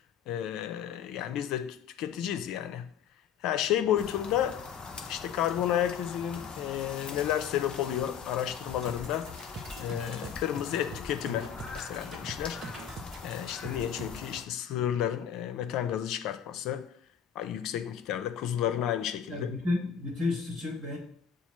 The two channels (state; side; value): quieter; right; 8.5 dB